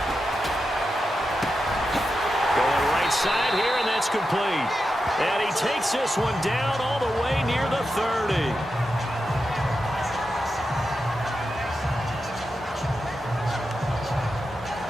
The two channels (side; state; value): both; normal; correlation 0.89